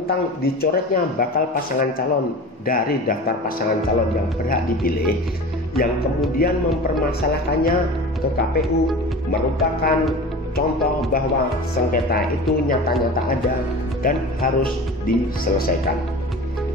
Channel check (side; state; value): both; normal; correlation 0.35